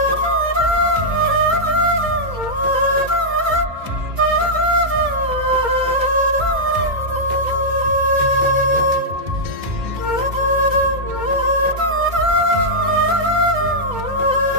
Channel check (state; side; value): late; left; 2.2 ms